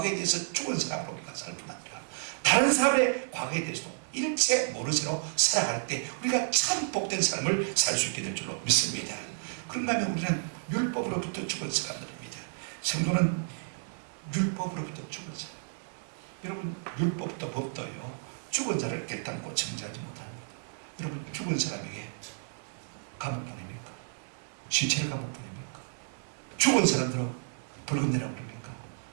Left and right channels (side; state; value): left; silent; digital silence